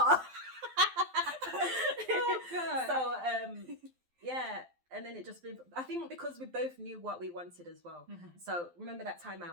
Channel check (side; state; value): left; late; 12 ms